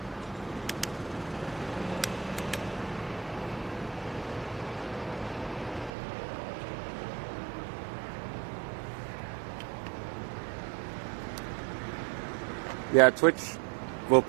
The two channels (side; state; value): left; drops out; at 5.9 s